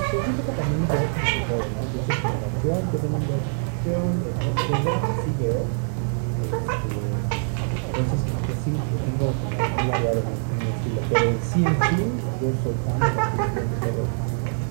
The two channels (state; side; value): silent; left; 60 dB below the other